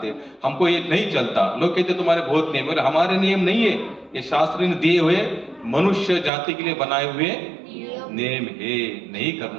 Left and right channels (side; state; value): left; drops out; at 6.3 s